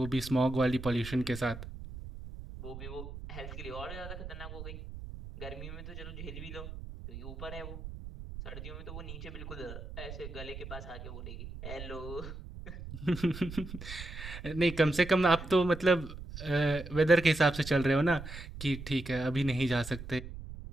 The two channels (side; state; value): right; noise; rumble, 11 dB below the sound